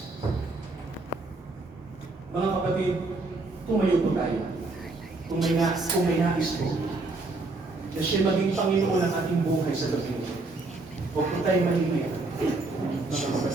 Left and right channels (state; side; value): quieter; left; 3.3 dB